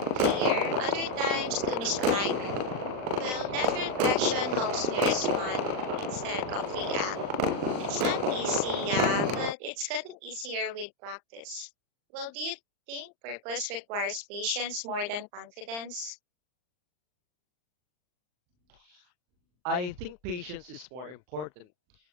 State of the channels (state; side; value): late; left; 39 ms